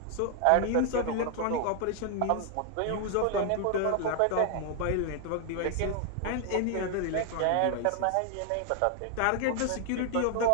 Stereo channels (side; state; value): both; different; correlation 0.00